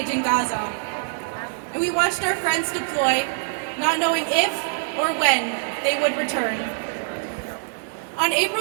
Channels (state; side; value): silent; left; 63 dB below the other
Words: in Gaza. And we watched our friends deploy, not knowing if or when they would return. On